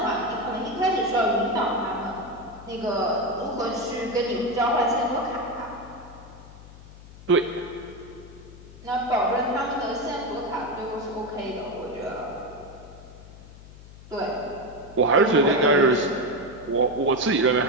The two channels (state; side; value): noise; left; hum, 18 dB below the sound